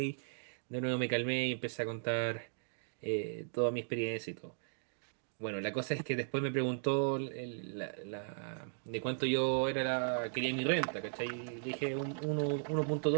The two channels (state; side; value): silent; left; digital silence